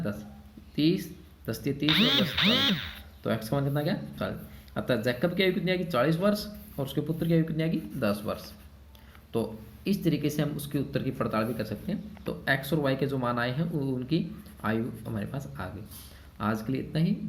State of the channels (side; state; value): both; identical; correlation 1.00